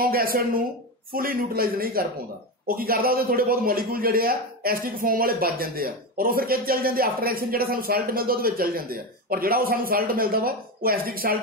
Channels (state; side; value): normal; both; correlation 0.17